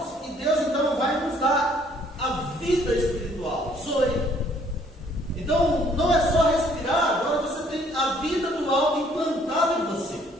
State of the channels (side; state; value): both; normal; correlation 0.62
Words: e Deus então vai nos dar a vida espiritual, zoe. Então não é só respirar, agora você tem a vida do alto implantada em você.